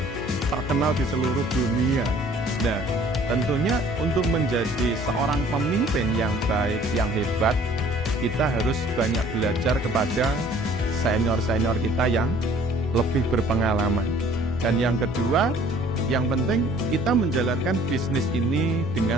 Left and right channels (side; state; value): both; normal; correlation 0.54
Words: terkenal di seluruh dunia. Nah, tentunya untuk menjadi seorang pemimpin yang baik, yang hebat, kita harus banyak belajar kepada senior-senior kita yang lebih berpengalaman. Dan yang kedua, yang penting kita menjalankan bisnis ini